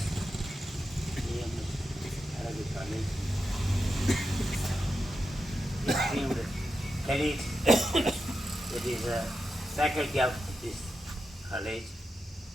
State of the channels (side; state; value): both; normal; correlation 0.89